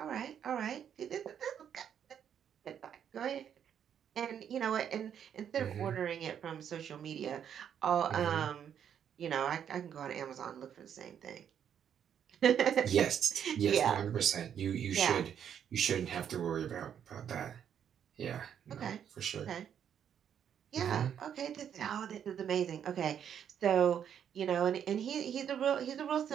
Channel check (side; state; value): left; quieter; 8.8 dB